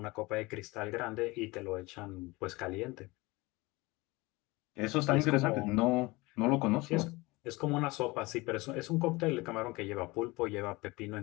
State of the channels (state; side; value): quieter; right; 22.7 dB